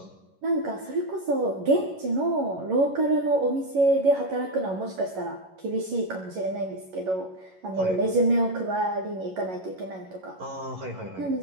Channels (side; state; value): left; late; 11 ms